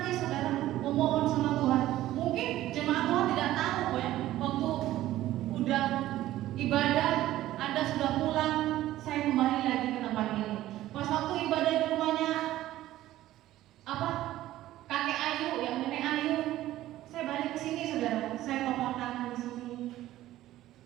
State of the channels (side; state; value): left; quieter; 14.6 dB